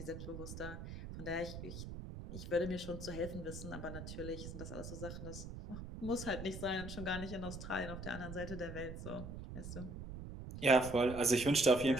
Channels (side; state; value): right; noise; rumble, 9 dB below the sound